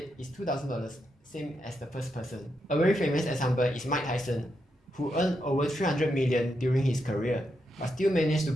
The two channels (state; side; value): normal; both; correlation 0.83